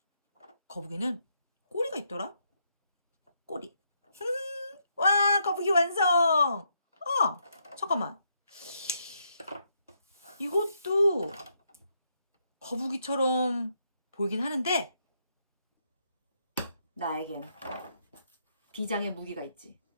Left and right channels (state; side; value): inverted; both; correlation -0.77